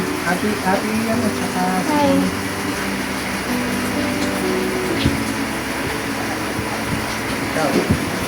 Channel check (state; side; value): identical; both; correlation 1.00